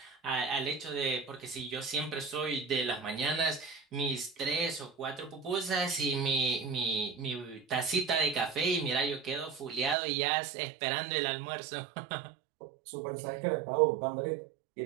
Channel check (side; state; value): left; drops out; at 10.0 s